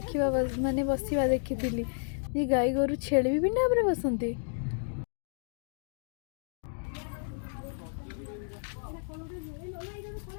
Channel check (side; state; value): right; silent; digital silence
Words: माने बसवा देखी ये गाई गोरु छेड़ी भी पिंडा पर बसंती